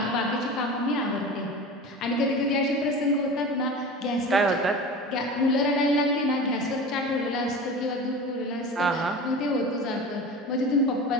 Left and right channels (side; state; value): both; normal; correlation 0.33